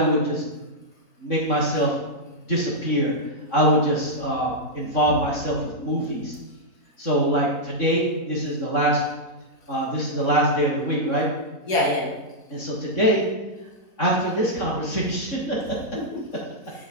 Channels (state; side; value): late; right; 4.8 ms